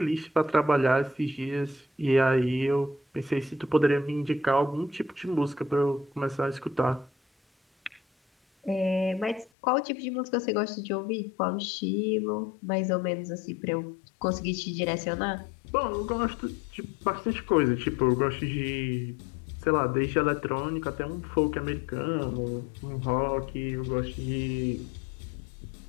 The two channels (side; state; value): right; drops out; at 9.5 s